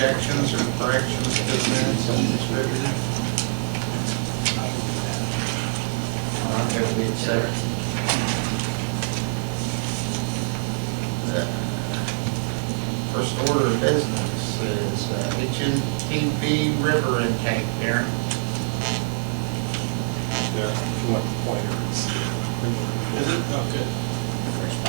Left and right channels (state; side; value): silent; left; digital silence